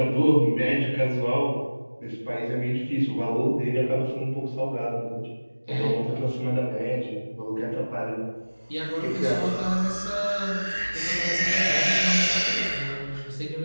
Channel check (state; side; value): inverted; both; correlation -1.00